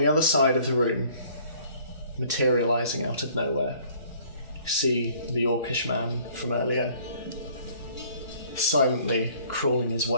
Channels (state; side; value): inverted; both; correlation -0.56